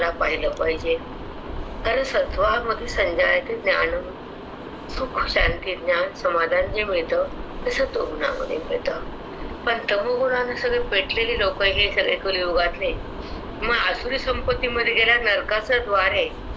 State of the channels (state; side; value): identical; both; correlation 1.00